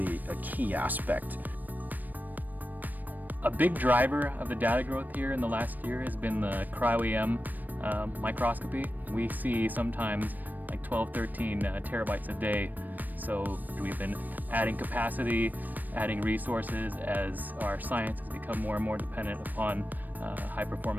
a key aspect. A big driver of the data growth here in the last year has been the cryo-EM microscopy. We see sometimes like 12, 13 terabytes a day. So we've been adding capacity, adding resources as our science has become more and more dependent upon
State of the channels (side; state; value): left; late; 0.087 ms